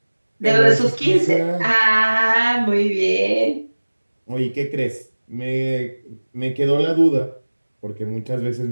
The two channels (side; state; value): both; inverted; correlation -1.00